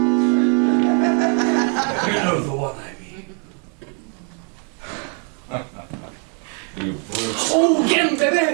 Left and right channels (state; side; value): quieter; left; 40.0 dB